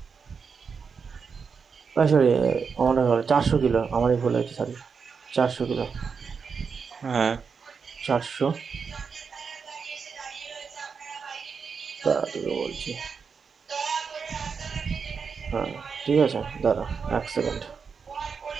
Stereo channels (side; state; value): left; quieter; 5.8 dB